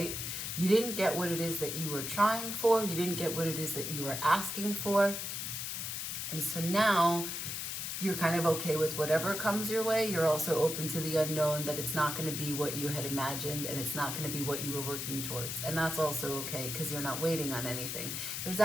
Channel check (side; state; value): left; noise; hiss, 4 dB below the sound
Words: You didn't get what it is that you were trying for. You didn't get what it is that you were asking for. And so now you're kind of okay with whatever comes your way. You're also open to the unknown, that it's not going to be what you had imagined and it's not going to be what you were working towards. And that's also okay because you're not waiting on anything. There's